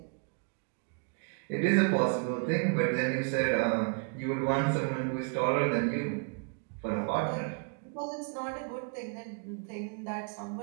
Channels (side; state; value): left; quieter; 36.8 dB